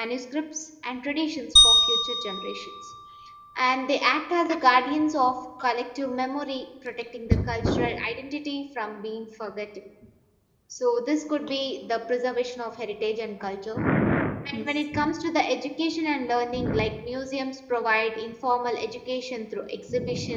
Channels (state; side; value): identical; both; correlation 1.00